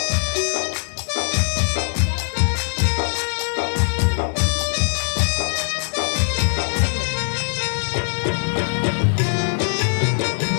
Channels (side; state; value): right; silent; digital silence